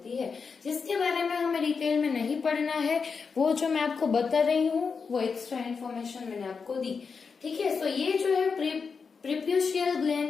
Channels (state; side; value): quieter; right; 5.4 dB